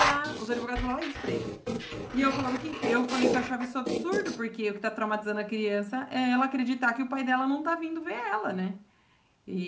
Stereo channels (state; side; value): identical; both; correlation 1.00